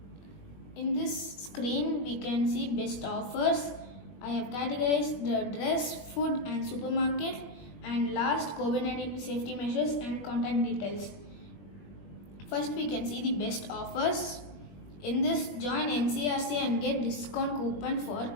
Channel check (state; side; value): late; right; 21 ms